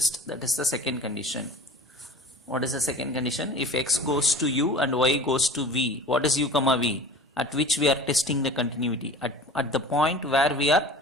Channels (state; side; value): normal; both; correlation 0.40